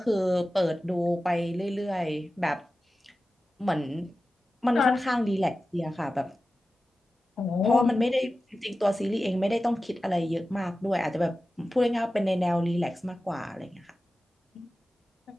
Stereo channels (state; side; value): normal; both; correlation 0.94